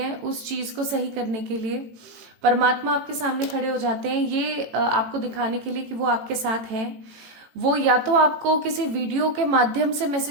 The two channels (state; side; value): late; left; 18 ms